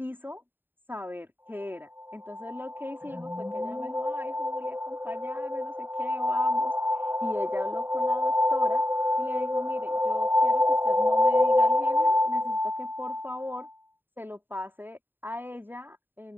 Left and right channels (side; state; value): left; late; 0.094 ms